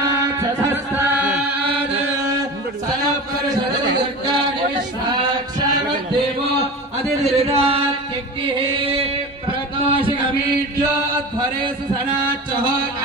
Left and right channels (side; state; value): both; normal; correlation 0.31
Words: सनपरिषदर्गाणि विश्वाक्षामद्देवो अधिरिरात्यग्निः प्रतोषिकमीड्यो अध्वरेषु सनाच्चः